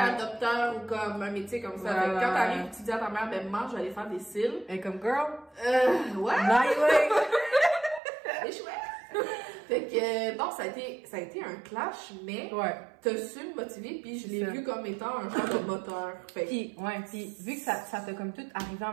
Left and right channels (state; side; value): drops out; left; at 8.0 s